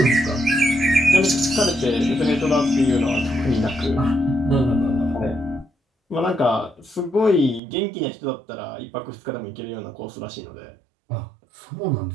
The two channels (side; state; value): left; drops out; at 7.6 s